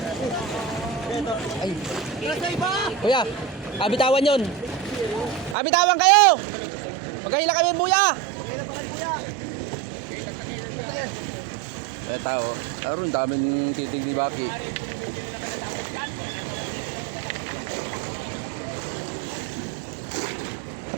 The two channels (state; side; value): drops out; left; at 5.6 s